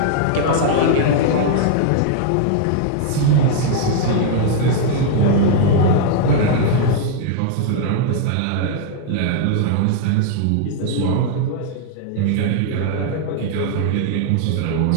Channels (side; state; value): both; different; correlation -0.01